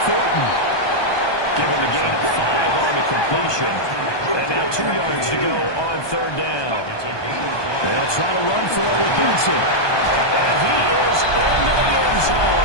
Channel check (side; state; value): right; late; 1.2 ms